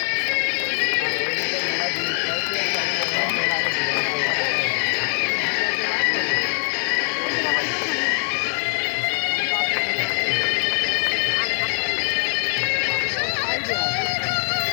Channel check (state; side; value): silent; right; digital silence